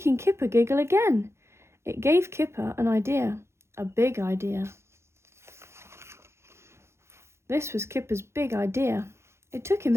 Kipper giggle again. It gave Kipper an idea, a big idea. This was Kipper's big idea. It took him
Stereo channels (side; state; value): left; late; 0.13 ms